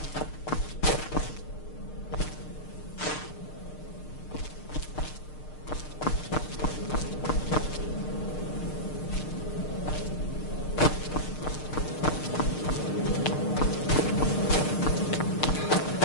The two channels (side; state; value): right; late; 6.6 ms